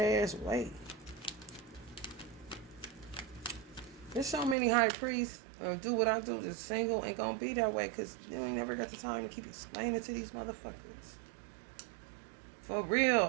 way. There's so many high priests do what I do, just single, ain't gonna be that way because you ain't never got the time to keep explaining to these motherfuckers. For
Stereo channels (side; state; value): left; drops out; at 4.5 s